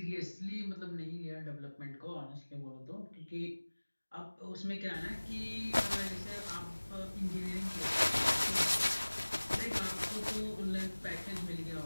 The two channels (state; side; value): inverted; both; correlation -1.00